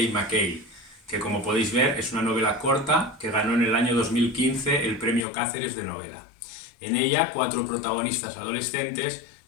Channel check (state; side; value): drops out; right; at 5.2 s